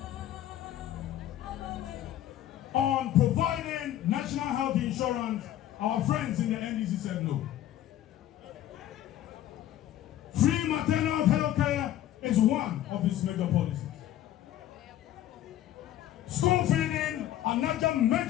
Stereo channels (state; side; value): quieter; right; 12.5 dB